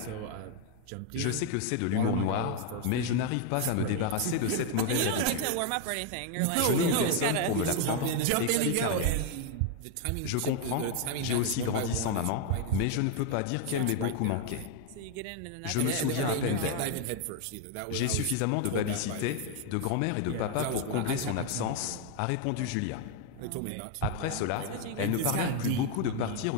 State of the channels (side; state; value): both; different; correlation 0.01